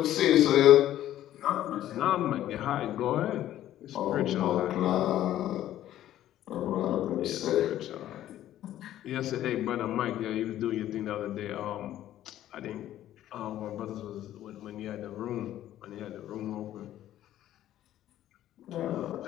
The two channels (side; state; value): right; quieter; 12.7 dB